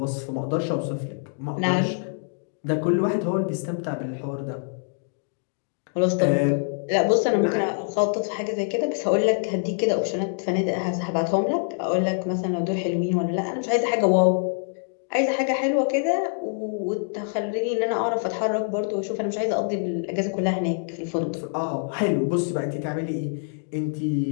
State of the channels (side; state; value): right; silent; digital silence